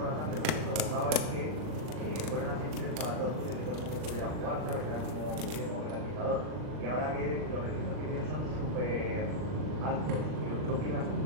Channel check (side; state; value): left; late; 39 ms